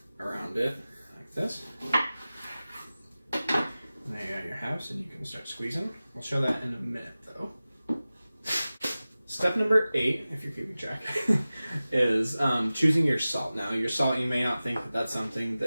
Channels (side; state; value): both; inverted; correlation -0.96